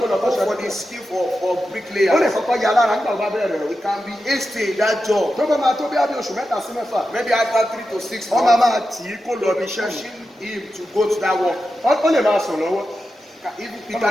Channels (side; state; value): both; normal; correlation 0.90